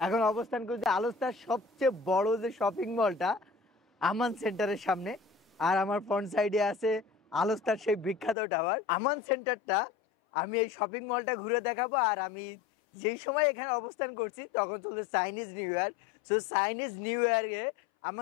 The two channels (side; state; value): right; drops out; at 8.3 s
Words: এখন অবস্থান করছি আলোস্তার সবচেয়ে বড় যে শপিং মলটা আমান সেন্টারের সামনে। আর আমার ফ্রন্ট সাইডে আছে আলোস্তার সেই বিখ্যাত টাওয়ার আমান সেন্টারটা। আমি এই শপিং মলটা ঘুরে দেখাবো। আর আমি যেই সময় এখানে অবস্থান করছি তখন চলছে Chinese new year. So Chinese new ইয়ারে